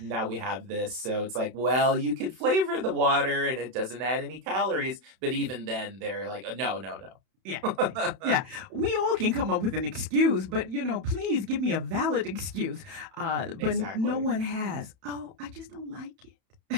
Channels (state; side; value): late; left; 31 ms